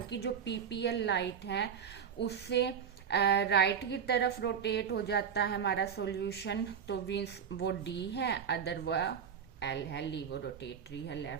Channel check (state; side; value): quieter; left; 7.5 dB